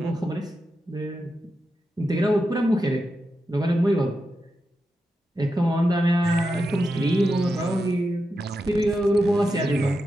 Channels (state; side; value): normal; both; correlation 0.88